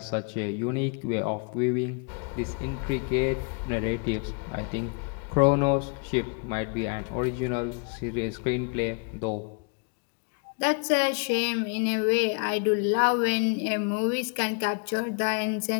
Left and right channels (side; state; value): right; quieter; 35.5 dB